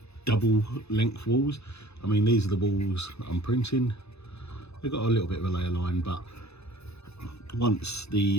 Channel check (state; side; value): late; right; 0.79 ms